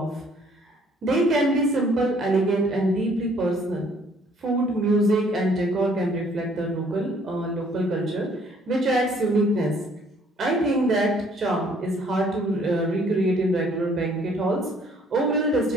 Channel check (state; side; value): normal; both; correlation 0.61